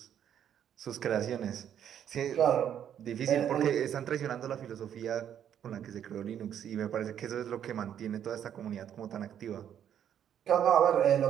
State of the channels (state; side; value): quieter; left; 9.6 dB